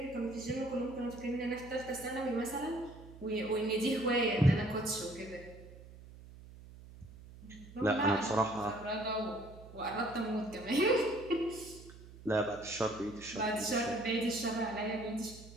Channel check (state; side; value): noise; right; hum, 18 dB below the sound